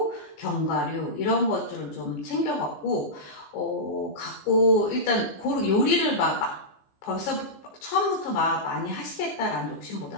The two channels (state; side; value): late; right; 15 ms